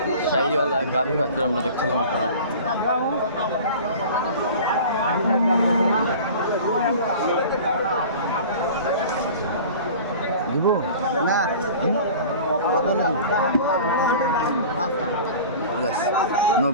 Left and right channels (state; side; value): inverted; both; correlation -0.39